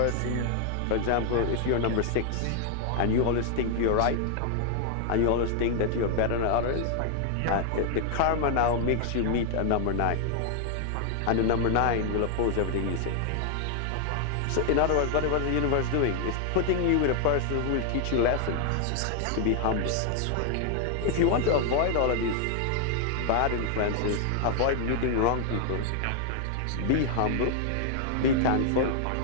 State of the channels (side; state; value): both; different; correlation 0.00